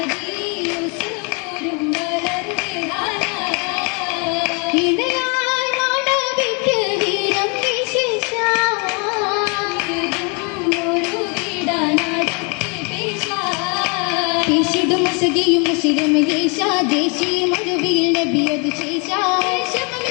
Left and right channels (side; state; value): right; quieter; 34.3 dB